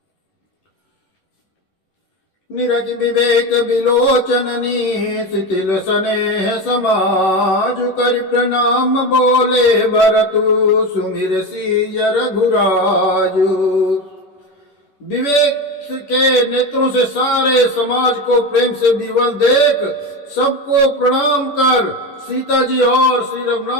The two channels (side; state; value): right; late; 11 ms